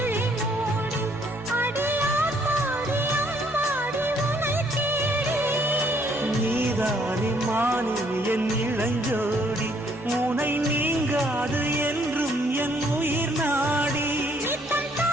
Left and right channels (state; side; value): normal; both; correlation 0.65